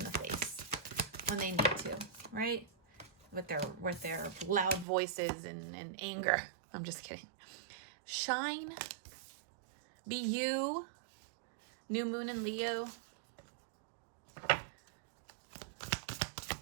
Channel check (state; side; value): drops out; left; at 4.9 s